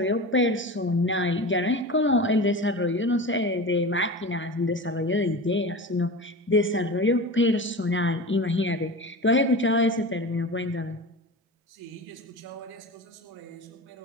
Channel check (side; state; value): both; normal; correlation 0.30